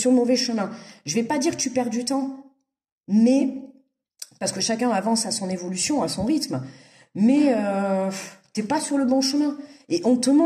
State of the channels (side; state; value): both; identical; correlation 1.00